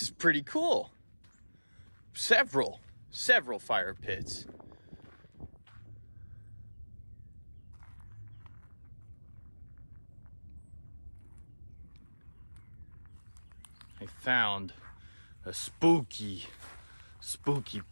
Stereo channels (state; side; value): inverted; both; correlation -1.00